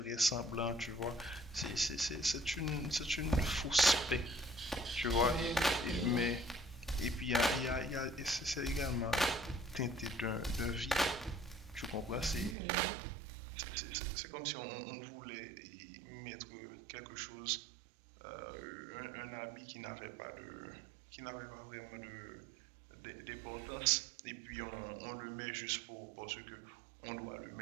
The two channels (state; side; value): drops out; left; at 12.6 s